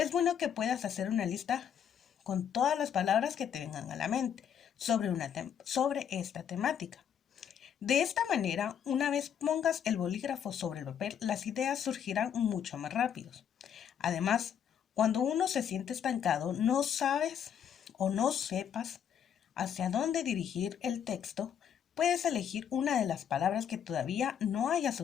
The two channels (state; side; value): quieter; right; 8.5 dB